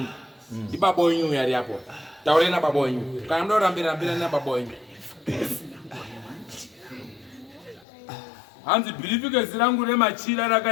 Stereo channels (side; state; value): right; drops out; at 7.9 s